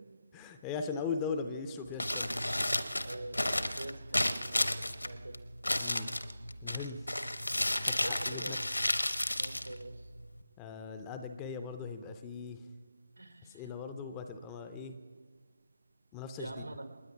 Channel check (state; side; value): inverted; both; correlation -0.88